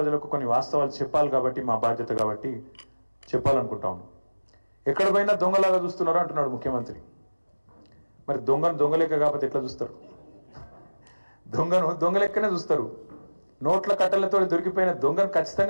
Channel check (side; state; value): both; inverted; correlation -1.00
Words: కొన్ని వాస్తవాలు చెప్పాలి కాబట్టి మా బాధ్యత కాబట్టి చెప్పాలనుకుంటాము. ఎక్కడ పోయినా దొంగలాగా చూస్తున్నారు అంటున్నాడు ముఖ్యమంత్రి. మరి దొంగలెక్క కాకపోతే ఎట్లా చూస్తారు? దొంగలెక్కనే చూస్తారు. నోట్ల కట్టలతో దొరికిపోయిన దొంగను